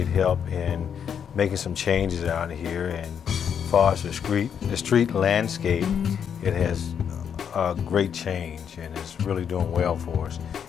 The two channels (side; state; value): right; quieter; 7.9 dB